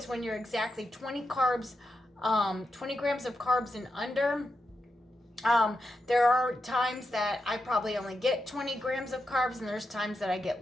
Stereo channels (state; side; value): normal; both; correlation 0.86